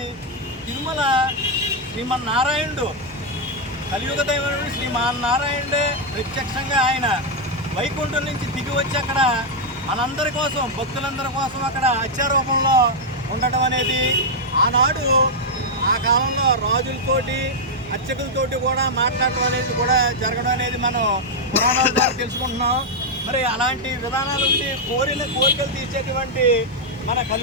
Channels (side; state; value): both; normal; correlation -0.02